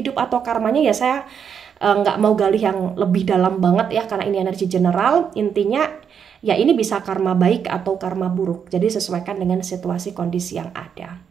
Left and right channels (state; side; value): quieter; left; 7.4 dB